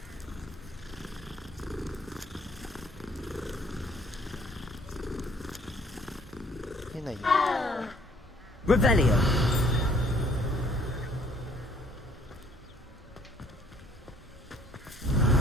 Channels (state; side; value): normal; both; correlation 0.61